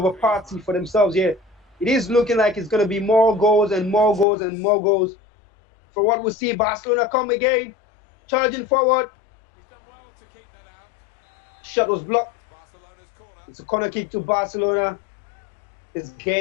a party for themselves here. It is looking like it's going to be more goals and more goals and more goals. For what we see, Barcelona come again, charging forward. Shot was blocked. It's a corner kick to Barcelona. This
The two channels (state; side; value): drops out; right; at 4.2 s